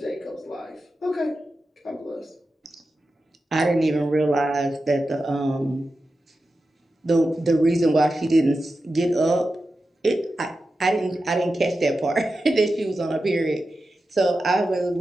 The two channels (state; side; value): normal; both; correlation 0.92